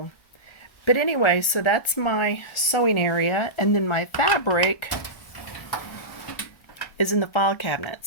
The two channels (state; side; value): late; right; 1.4 ms